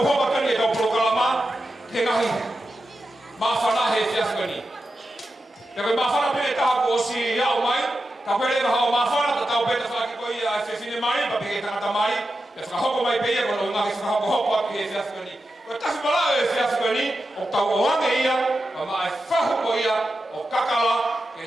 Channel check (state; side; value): normal; both; correlation 0.90